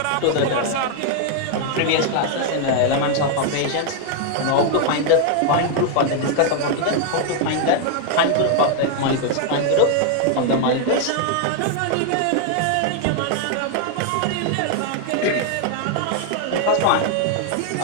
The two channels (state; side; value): different; both; correlation 0.00